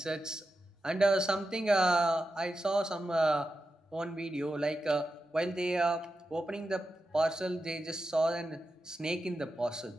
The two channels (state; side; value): normal; both; correlation 0.90